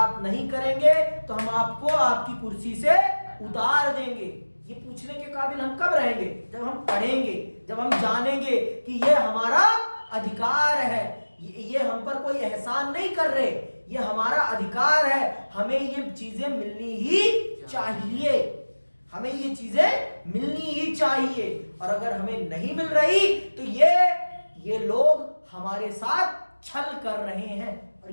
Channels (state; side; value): inverted; both; correlation -1.00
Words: नहीं करेंगे तो हम आपको आपकी कुर्सी से उतार देंगे। ये पूछने के काबिल हम कब रहेंगे? जब हम पढ़ेंगे, जब हम जानेंगे कि ये हमारा अधिकार है, ये हम पर कोई एहसान नहीं कर रहे, ये हमारा अधिकार है, हमें ये चीजें मिलनी ही चाहिए, हमें ये चीजें मिलनी ही चाहिए। और अगर हमें नहीं मिल रही तो ये लोग हमारे साथ छल कर रहे हैं। और